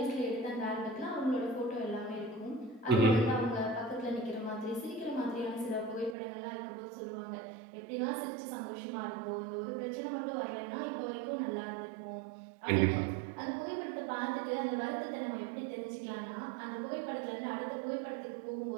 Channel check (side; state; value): left; drops out; at 6.2 s